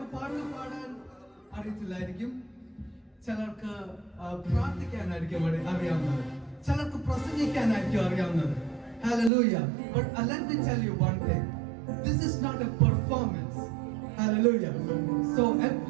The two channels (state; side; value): drops out; left; at 9.3 s